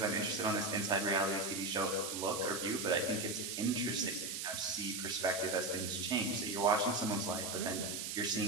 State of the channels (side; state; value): right; noise; hiss, 4 dB below the sound